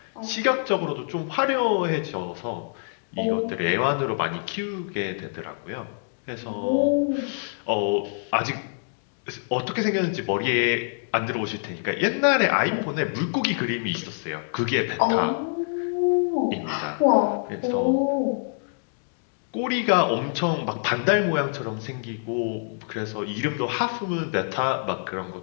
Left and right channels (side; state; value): right; silent; digital silence